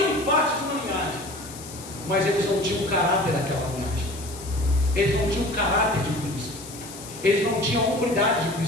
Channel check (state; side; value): noise; left; hiss, 14 dB below the sound